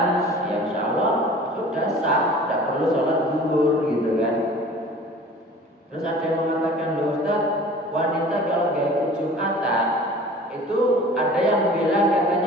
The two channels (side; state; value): both; normal; correlation 0.44